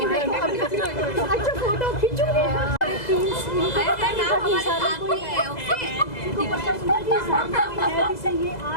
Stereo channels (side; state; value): right; late; 2.0 ms